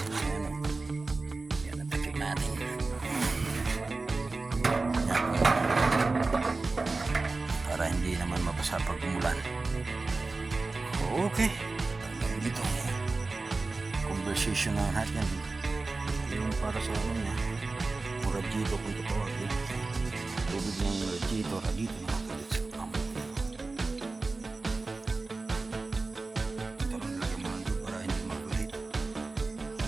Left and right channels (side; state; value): left; quieter; 3.6 dB